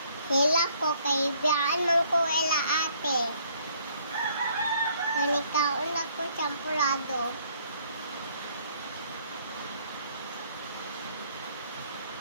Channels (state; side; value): inverted; both; correlation -0.63